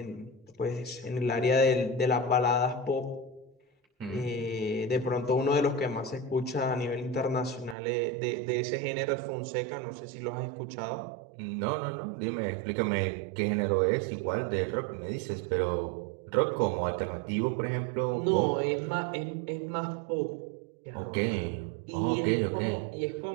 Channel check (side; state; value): left; drops out; at 7.8 s